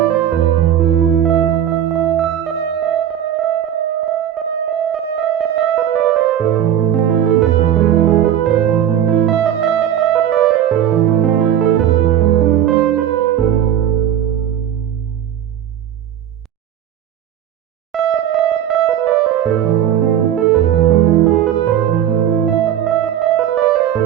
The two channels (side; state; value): left; quieter; 10.3 dB